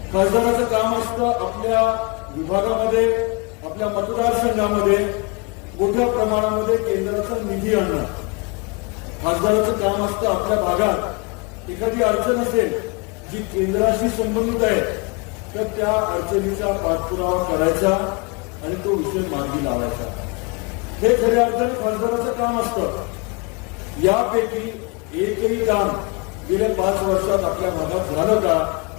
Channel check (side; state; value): right; quieter; 30.5 dB